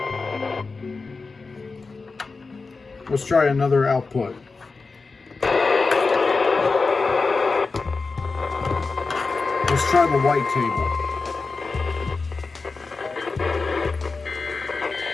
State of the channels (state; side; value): quieter; right; 4.2 dB